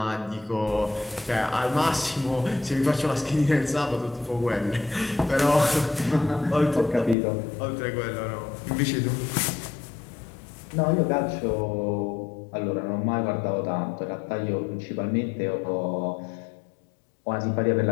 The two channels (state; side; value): drops out; right; at 7.2 s